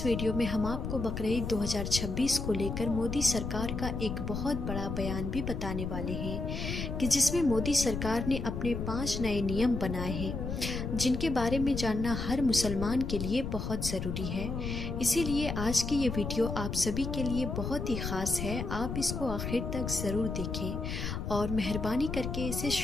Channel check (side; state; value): left; noise; rumble, 4 dB below the sound